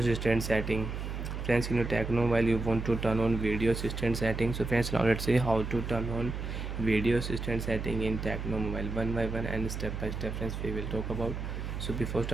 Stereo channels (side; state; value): right; noise; hum, 5 dB below the sound